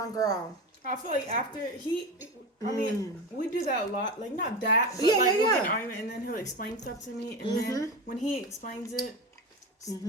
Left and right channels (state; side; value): normal; both; correlation 0.23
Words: all. I feel like after I mean, we do that a lot. Like, not that, but Yeah, we'll yeah. get an argument, and then he'll explain stuff to me, and then when he explains it,